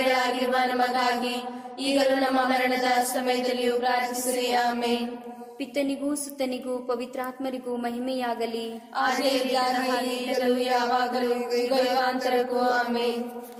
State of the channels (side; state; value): both; identical; correlation 1.00